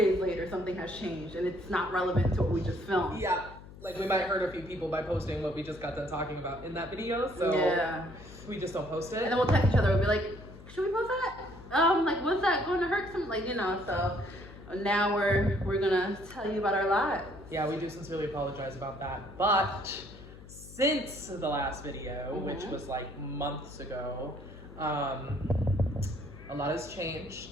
later something has changed and it's not relevant to what we just filmed. yeah, like we might hurt a few people by posting what we just got done talking about in that video. So Yeah. we just don't post it. And then we'll text each other. We'll be like, should we post that? Like, was that going to hurt some? Like, so now we're gonna tell you about our lives. Yeah, we do sincerely apologize about that. But since the last video, which was like months ago, a lot has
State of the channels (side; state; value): left; noise; hum, 17 dB below the sound